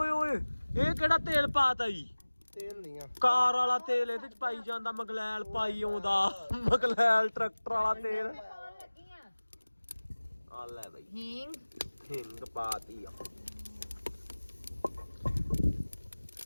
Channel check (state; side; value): inverted; both; correlation -1.00